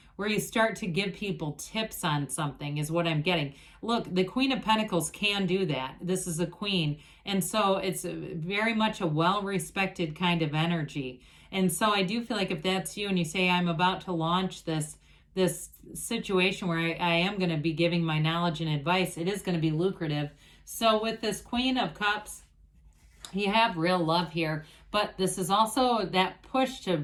where you start to give people tips on something is what I'm getting. Look, the Queen of Pentacles can do that. This is a queen. And so it's very much a well-respected kind of energy. And so I do feel like if that's you and you say, I'm about to launch this situation where I am going to be giving my knowledge and advice, it is going to be lucrative. So with this Queen of Cups, you have real love here, but this is also that push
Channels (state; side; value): identical; both; correlation 1.00